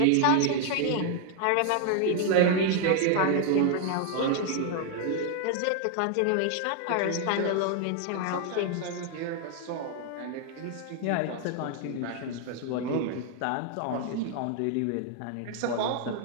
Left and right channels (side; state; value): both; different; correlation 0.00